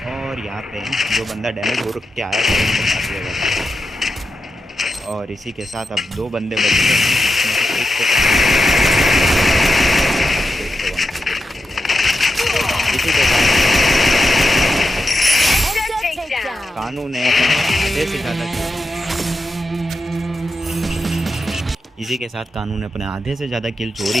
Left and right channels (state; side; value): normal; both; correlation 0.89